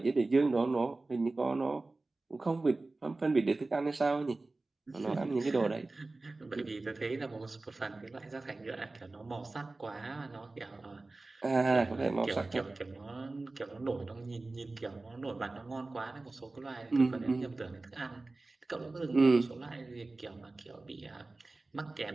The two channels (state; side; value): quieter; left; 3.2 dB